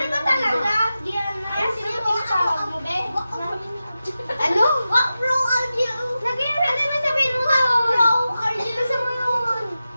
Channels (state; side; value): inverted; both; correlation -0.93